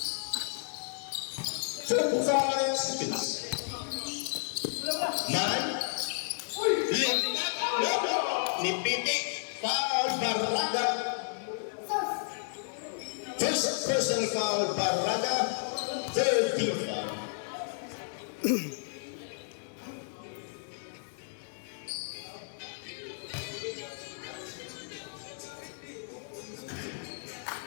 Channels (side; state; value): right; silent; digital silence